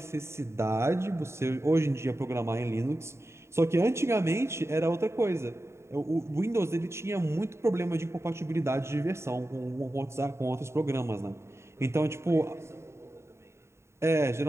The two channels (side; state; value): left; late; 0.13 ms